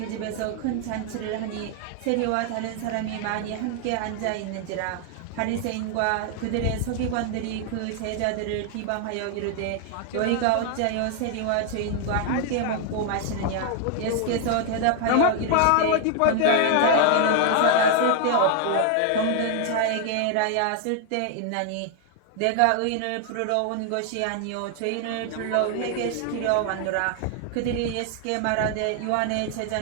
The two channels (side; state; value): both; different; correlation 0.00